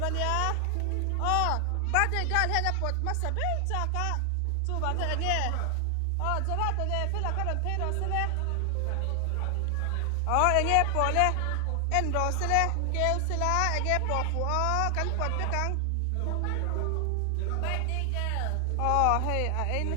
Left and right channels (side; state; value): both; different; correlation 0.00